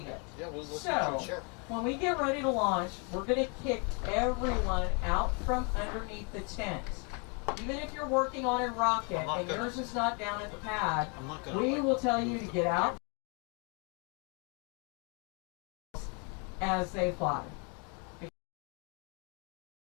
it. So, when we get ready to launch, we're going to kick everyone out from underneath the tent. Even if you're working on a rocket and yours is not down at the pad, we will tell you to get out as they fly.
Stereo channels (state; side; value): quieter; right; 34.9 dB